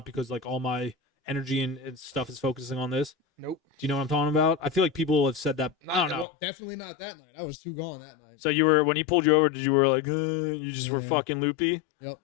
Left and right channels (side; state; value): right; drops out; at 6.2 s